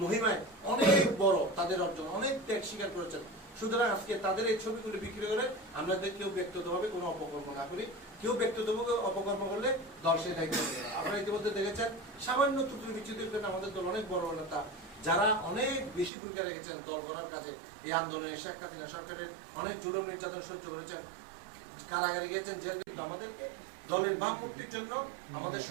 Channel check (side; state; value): left; drops out; at 16.1 s